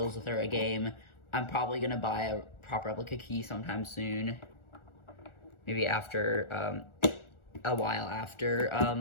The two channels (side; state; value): right; late; 1.4 ms